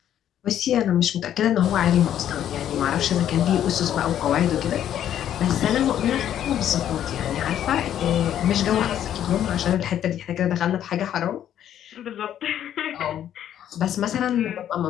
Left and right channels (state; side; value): quieter; right; 10.6 dB